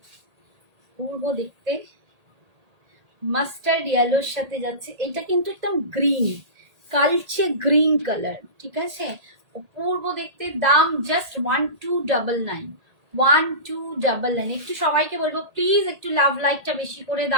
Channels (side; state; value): left; late; 1.8 ms